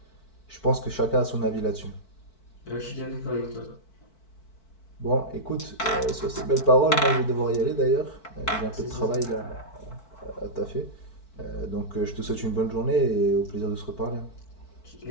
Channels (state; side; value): late; right; 4.5 ms